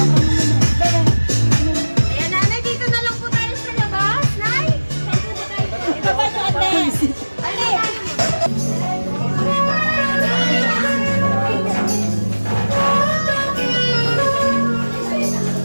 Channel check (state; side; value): inverted; both; correlation -1.00